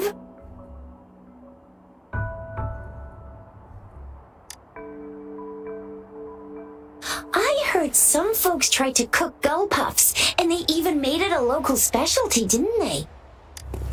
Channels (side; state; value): both; identical; correlation 1.00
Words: I heard some folks tried to cook gull puffs, and they even made it a local specialty, didn't they?